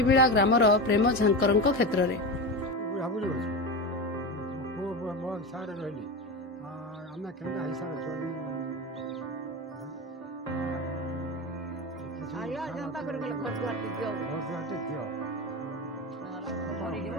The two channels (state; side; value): normal; both; correlation 0.22